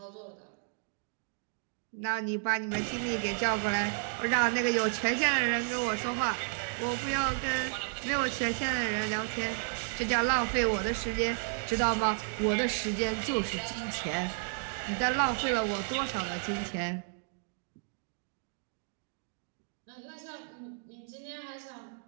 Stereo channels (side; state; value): left; silent; 56 dB below the other